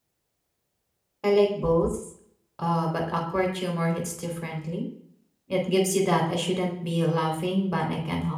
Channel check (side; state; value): both; identical; correlation 1.00